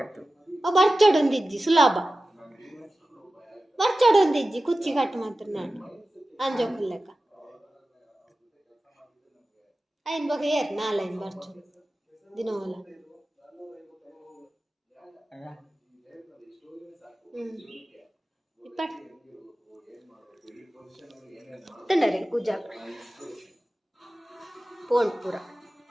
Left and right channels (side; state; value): both; normal; correlation 0.95